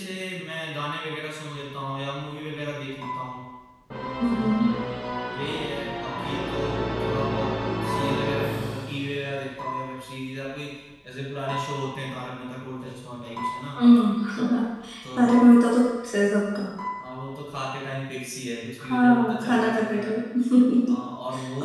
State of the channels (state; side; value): identical; both; correlation 1.00